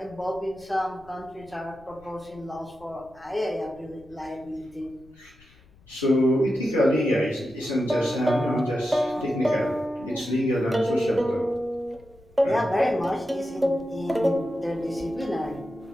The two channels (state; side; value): noise; left; rumble, 26 dB below the sound